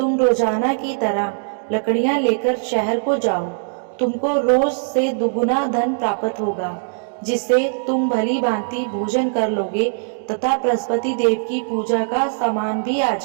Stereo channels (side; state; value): left; silent; digital silence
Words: रोजाना की तरह लकड़ियां लेकर शहर को जाओ। तुमको रोज से दुगुना धन प्राप्त होगा, जिससे तुम भली भांति भोजन कर लोगे तथा बृहस्पति देव की पूजा का सामान भी आ